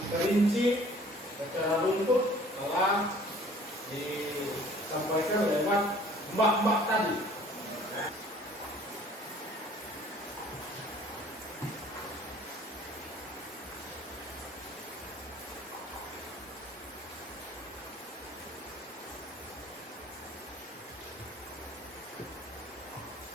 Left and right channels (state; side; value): normal; both; correlation 0.53